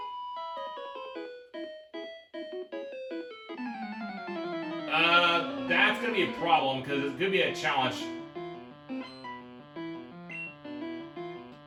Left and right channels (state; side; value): identical; both; correlation 1.00